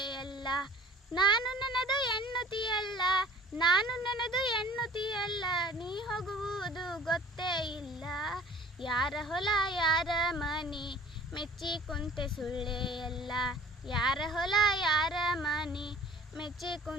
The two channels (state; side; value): normal; both; correlation 0.47